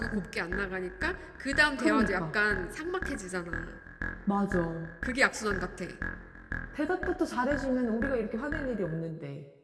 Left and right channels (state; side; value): identical; both; correlation 1.00